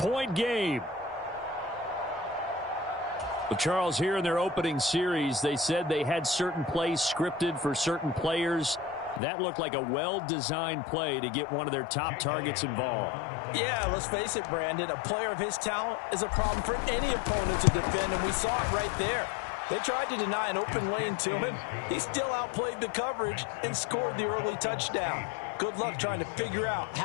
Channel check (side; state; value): right; drops out; at 9.2 s